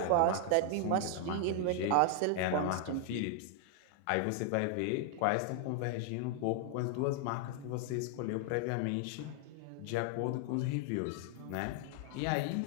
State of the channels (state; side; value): different; both; correlation 0.00